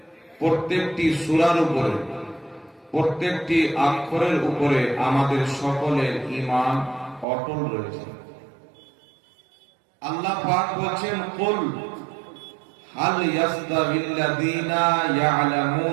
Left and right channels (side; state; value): left; drops out; at 7.2 s